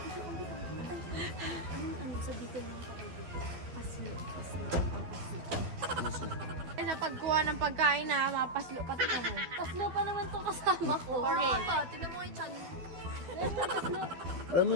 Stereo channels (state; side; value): late; left; 12 ms